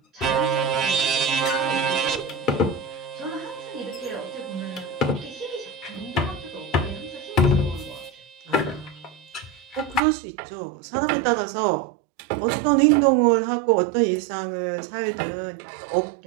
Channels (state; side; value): drops out; left; at 10.0 s